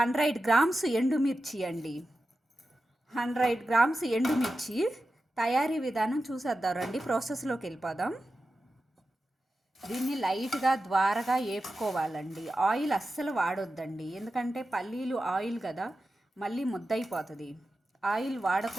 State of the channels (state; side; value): normal; both; correlation 0.92